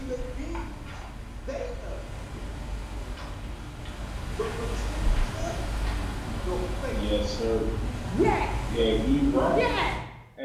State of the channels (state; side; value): identical; both; correlation 1.00